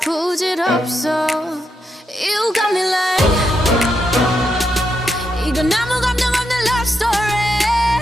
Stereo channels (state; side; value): normal; both; correlation 0.82